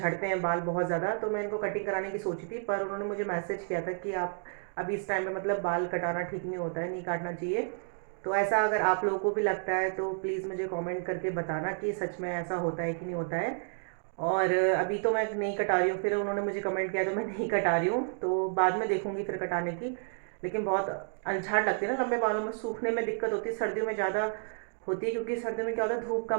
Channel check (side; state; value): left; silent; digital silence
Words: हैं बाल बहुत ज़्यादा। तो मैं इनको कटिंग कराने की सोची थी, पर उन्होंने मुझे मैसेज किया था कि आप अभी इस टाइम पे मतलब बाल कटाना ठीक नहीं होता है, नहीं काटना चाहिए। तो ऐसा अगर आप लोगों को भी लगता है तो प्लीज़ मुझे कमेंट करके बताना कि सच में ऐसा होता है कि नहीं होता है। और अभी तो मैं नहीं कटा रही हूँ, फिर उन्होंने मुझे कमेंट किया तो मैं नहीं कटा रही हूँ, तो बाद में देखूंगी फिर कटाने की। लेकिन बहुत अलझाट लगती है ना लंबे बालों में, सूखने में दिक्कत होती है, सर्दियों में ज़्यादा होती है, क्योंकि सर्दियों में क्या होता है धूप